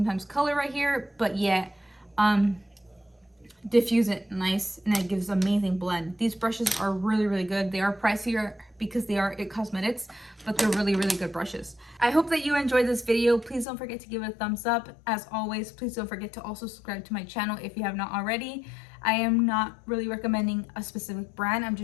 color right here, but yet diffuse it nice, and it gives amazing blend. These brushes are really, really good. They are pricier because they are IT Cosmetics, but they're really, really good brushes. I hope that you enjoyed this video. Please don't forget to give it a thumbs up. As always, please don't forget to also subscribe to my channel if you have not already. I am not really recommending a specific brand. I'm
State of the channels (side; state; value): right; drops out; at 13.7 s